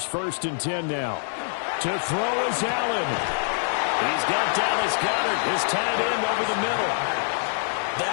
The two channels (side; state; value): right; silent; digital silence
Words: 1st and 10 now. To throw is Allen. He's got Dallas Goedert, his tight end, over the middle.